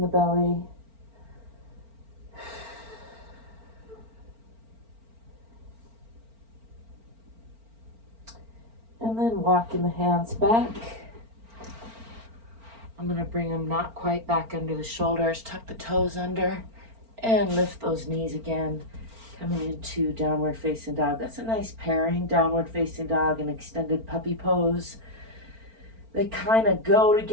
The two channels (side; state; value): left; late; 4.4 ms